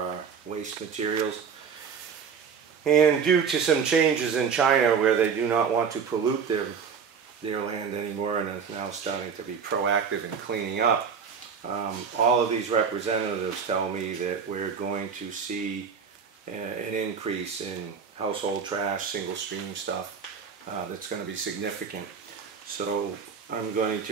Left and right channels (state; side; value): quieter; left; 6.4 dB